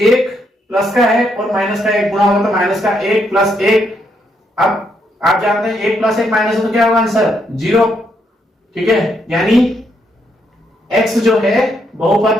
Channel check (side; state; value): both; normal; correlation 0.76